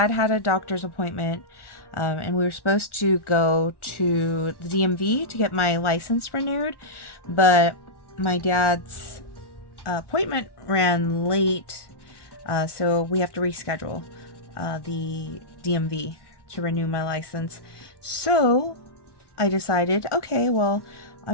had a doctor's appointment, and we were supposed to go to the DMV to get my license renewed, but my dad's appointment ran late, so we have to reschedule the DMV to renew my license. So I decided, okay, well,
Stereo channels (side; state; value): right; late; 1.1 ms